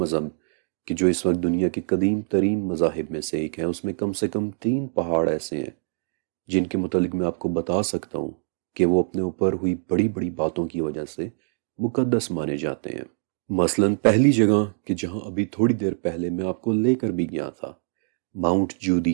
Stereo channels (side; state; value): left; silent; digital silence